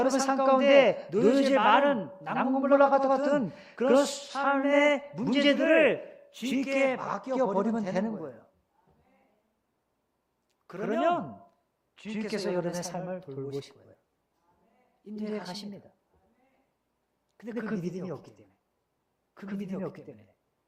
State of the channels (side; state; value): both; identical; correlation 1.00